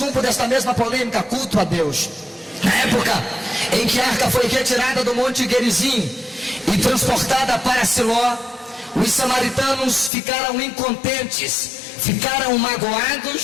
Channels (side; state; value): right; drops out; at 10.1 s